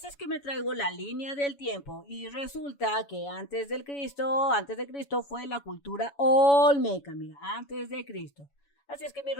es que me traigo la línea del tiempo y resulta que antes de Cristo fue la cultura olmeca, mira, antes de Cristo. Así es que mi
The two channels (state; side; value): late; right; 7.1 ms